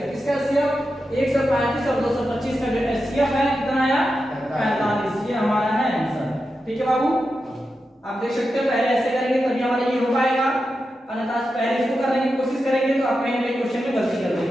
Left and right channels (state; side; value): normal; both; correlation 0.89